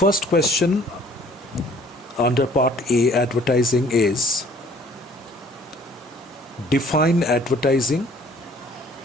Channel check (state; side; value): normal; both; correlation 0.56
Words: question under part A, advertising, is define advertising,